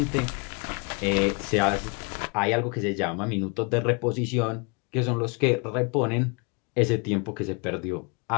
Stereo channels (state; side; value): quieter; right; 32.4 dB